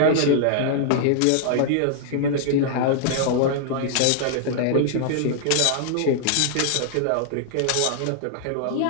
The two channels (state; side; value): different; both; correlation -0.01